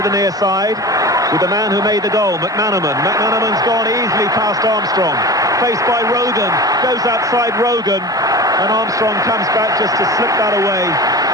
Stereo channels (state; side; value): normal; both; correlation 0.32